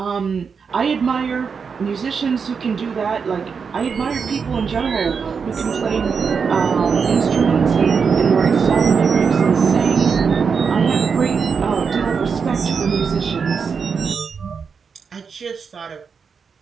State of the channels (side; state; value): left; quieter; 5.8 dB